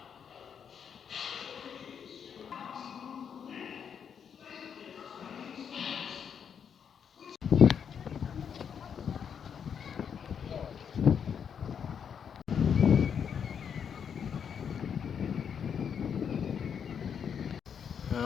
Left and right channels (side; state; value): right; quieter; 7.5 dB